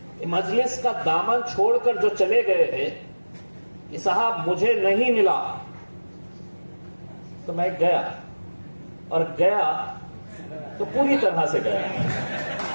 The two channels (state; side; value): inverted; both; correlation -1.00